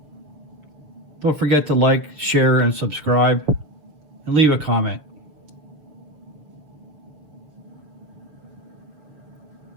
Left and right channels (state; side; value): late; left; 7.1 ms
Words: Don't forget to like, share, and subscribe, and leave a comment.